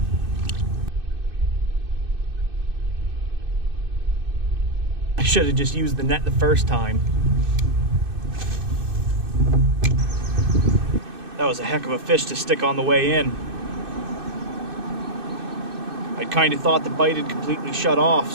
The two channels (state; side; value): late; left; 2.6 ms